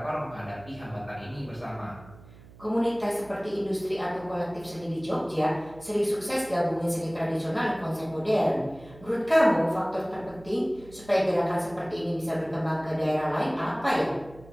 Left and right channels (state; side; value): noise; right; hum, 21 dB below the sound